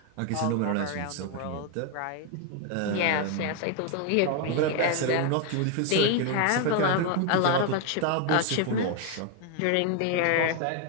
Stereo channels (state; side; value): different; both; correlation 0.01